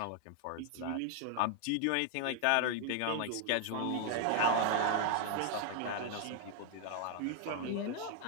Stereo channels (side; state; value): both; different; correlation 0.01